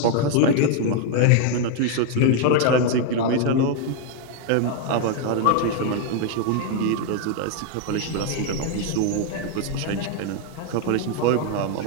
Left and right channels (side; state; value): both; different; correlation 0.01